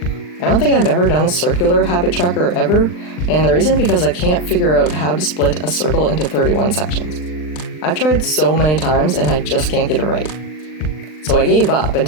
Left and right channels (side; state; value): right; late; 39 ms